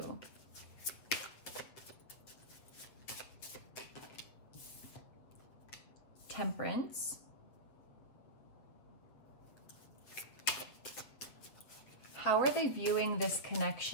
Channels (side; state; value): right; late; 8.0 ms